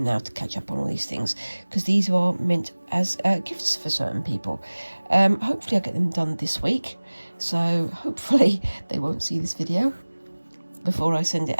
now to catch up on all these things, because these are meant as gifts for certain people. Hopefully I'll get them done this week, so hopefully they won't see this video before I send it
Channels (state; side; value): inverted; both; correlation -1.00